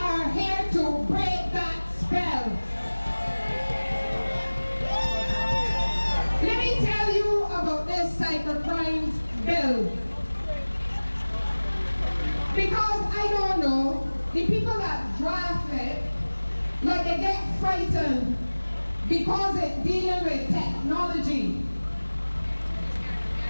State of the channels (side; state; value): both; inverted; correlation -1.00